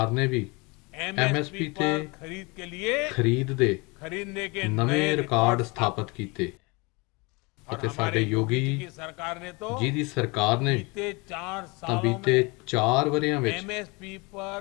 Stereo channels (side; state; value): right; quieter; 27.4 dB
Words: ਨੇ ਵੀ MSP ਤੇ ਖਰੀਦ ਦੇ ਨਵੇਂ ਰਿਕਾਰਡ ਸਥਾਪਿਤ ਕੀਤੇ ਅਤੇ ਸਾਡੇ ਯੋਗੀ ਜੀ ਦੀ ਸਰਕਾਰ ਨੇ ਤਾਂ ਬੀਤੇ 4 ਵਰ੍ਹਿਆਂ ਵਿੱਚ